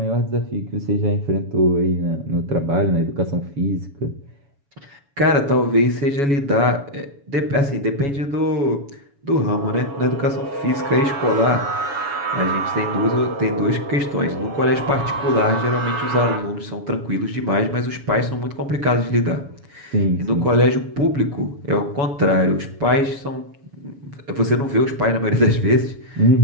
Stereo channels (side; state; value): left; late; 7.1 ms